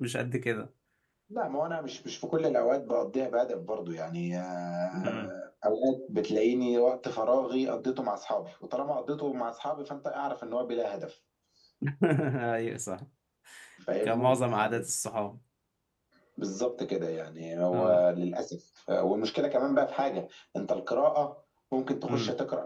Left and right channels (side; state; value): both; identical; correlation 1.00